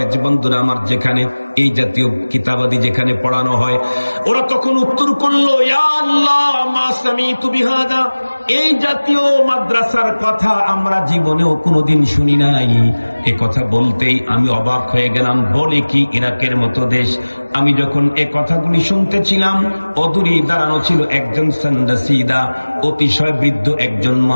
যে বন্ধুরা আমার, যেখানে এই জাতীয় কিতাবাদি যেখানে পড়ানো হয়। ওরা তখন উত্তর করলো, ইয়া আল্লাহ মা সামিতু বিহাদা, এই জাতীয় মাদ্রাসার কথা আমরা জীবনেও কোনোদিন শুনি নাই। এ কথা বলতেই আমি অবাক হয়ে গেলাম। বলে কি, ইরাকের মতো দেশ। আমি যখন এ কথাগুলি শুনতেছিলাম, অদূরেই দাঁড়ানো ছিল একজন সান্দাসিদা, অতিশয় বৃদ্ধ একজন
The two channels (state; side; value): inverted; both; correlation -1.00